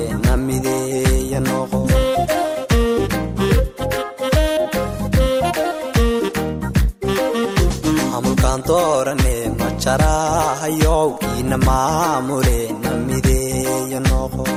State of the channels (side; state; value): both; identical; correlation 1.00